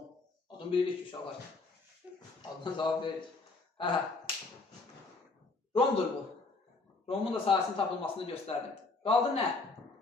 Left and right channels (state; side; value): quieter; right; 3.7 dB